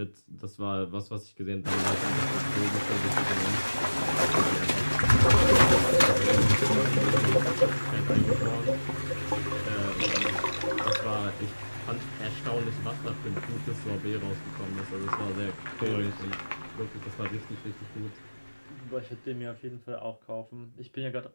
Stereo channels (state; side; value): inverted; both; correlation -1.00